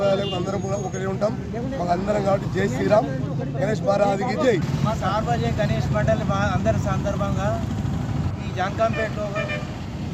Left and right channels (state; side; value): identical; both; correlation 1.00